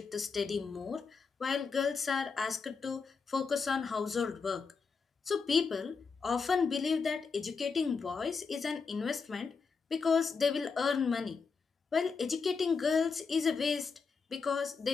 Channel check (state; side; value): quieter; right; 5.1 dB